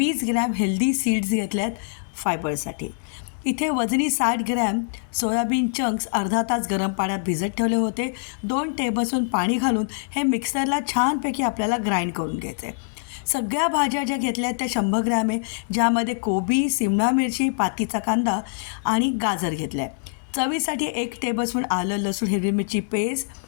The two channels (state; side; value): silent; right; digital silence